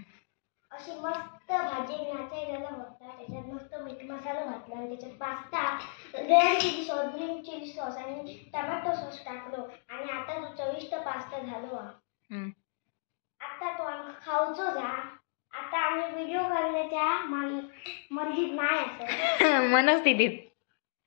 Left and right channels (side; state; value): right; silent; digital silence